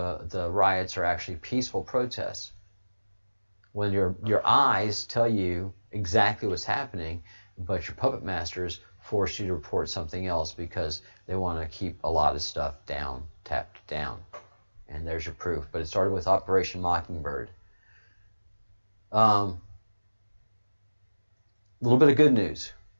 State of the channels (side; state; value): both; inverted; correlation -1.00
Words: riots are actually peaceful protests. When your eyes tell you exactly what's happening, but your puppet masters force you to report something else because they want to keep a lot of stuff tapped down. And there's your proof. But it started with Operation Mockingbird. A little bit of good news.